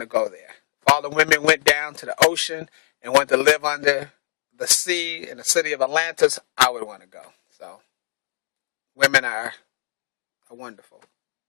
to go there. If all the women went down to the ocean and wanted to live under the sea in the city of Atlantis, I would want to go. So, women are wonderful.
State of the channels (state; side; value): silent; right; digital silence